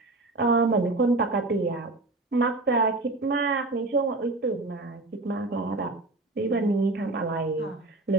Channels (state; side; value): quieter; left; 3.0 dB